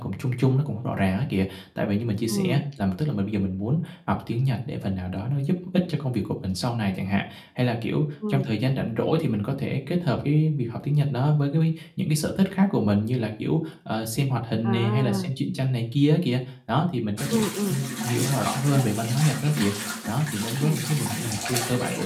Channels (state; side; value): identical; both; correlation 1.00